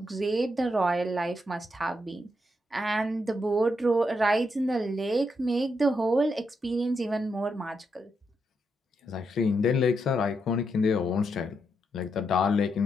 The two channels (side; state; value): both; normal; correlation 0.81